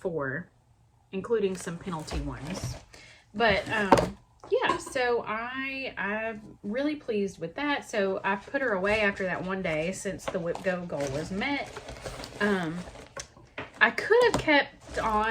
including some penalty ones. But yeah, so I'm really pleased with that. So I put her away after that one day since the whip go goal was met. I could have kept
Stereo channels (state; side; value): identical; both; correlation 1.00